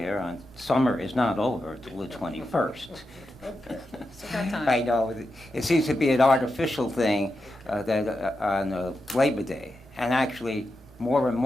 on summer is not over until the 21st. Okay, so got time. I know, it seems to be an artificial thing that on Labor Day, and actually more and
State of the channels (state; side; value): normal; both; correlation 0.88